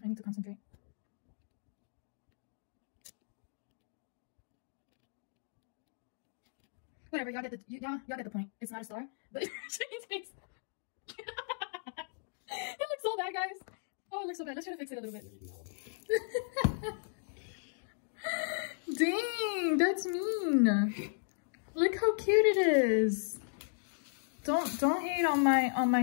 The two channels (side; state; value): right; silent; digital silence